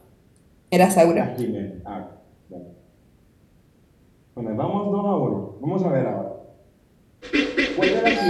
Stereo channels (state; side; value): identical; both; correlation 1.00